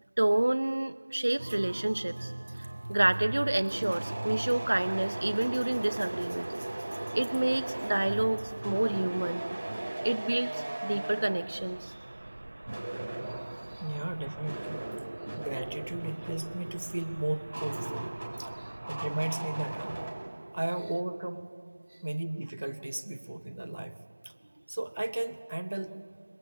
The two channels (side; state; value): both; inverted; correlation -1.00